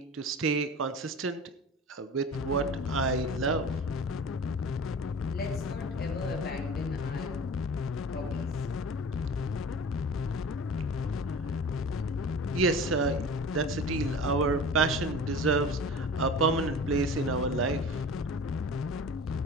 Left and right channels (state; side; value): normal; both; correlation 0.37